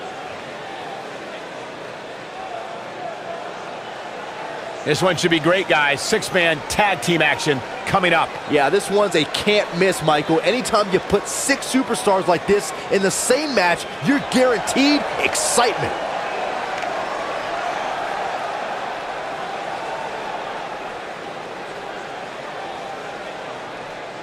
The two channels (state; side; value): identical; both; correlation 1.00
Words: This one should be great, guys. Six-man tag team action coming up. Yeah, this one's a can't miss, Michael. Anytime you put 6 superstars like this in the same match, you're guaranteed excitement.